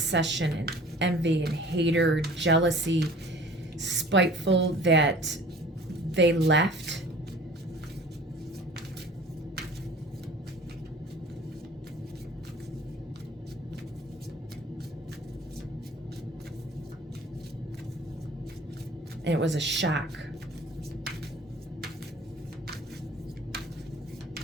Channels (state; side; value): normal; both; correlation 0.46